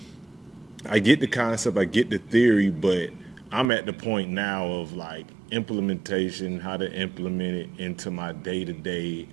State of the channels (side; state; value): left; drops out; at 3.7 s